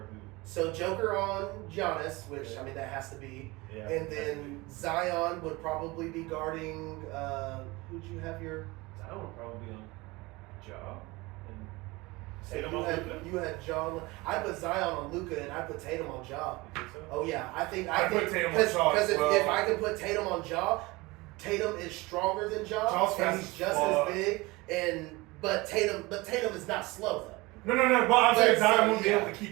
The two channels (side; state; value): left; quieter; 22.7 dB